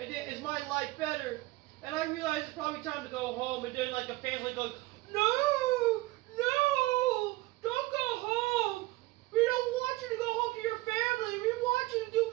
is my life better. And I realize it's probably time to go home, and then like the fans like go, no, don't go home. We don't want you to go home to your family. We want you to do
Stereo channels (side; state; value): left; quieter; 20.1 dB